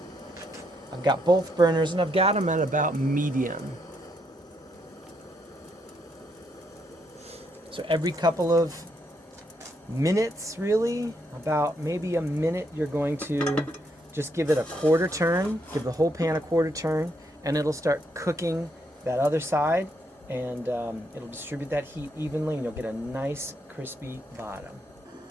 I've got both burners and I've got them at about medium. So every couple of minutes, really, about maybe a minute, you're going to just give it a quarter turn, give the whole pan a quarter turn, and it'll start cooking that other side, and it'll distribute that heat evenly, and you'll get a nice crispy bottom.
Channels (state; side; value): normal; both; correlation 0.76